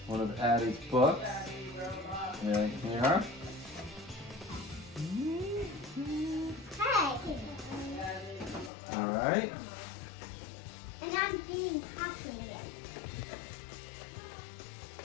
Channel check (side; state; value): right; drops out; at 8.7 s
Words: one of Addie's books. Right here. Hey! All right. And I'm getting popcorn again.